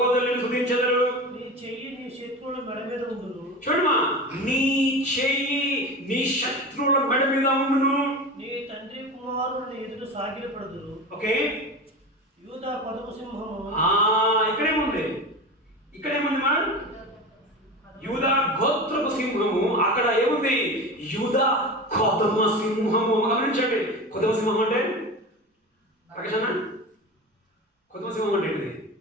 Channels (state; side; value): normal; both; correlation 0.28